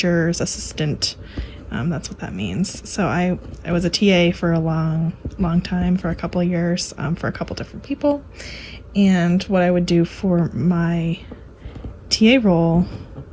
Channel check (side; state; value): both; identical; correlation 1.00